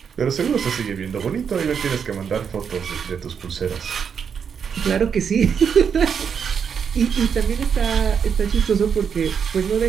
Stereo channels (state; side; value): quieter; left; 7.0 dB